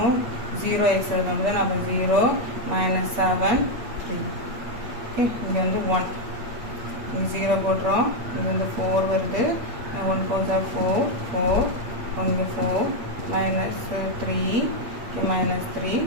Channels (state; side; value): late; left; 8.3 ms